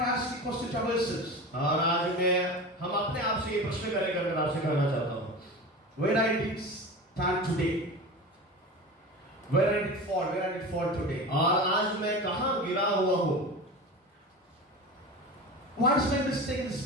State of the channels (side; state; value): both; normal; correlation 0.30